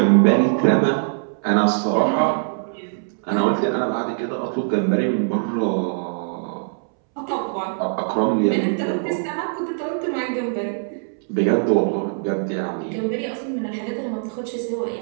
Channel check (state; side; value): silent; left; 64 dB below the other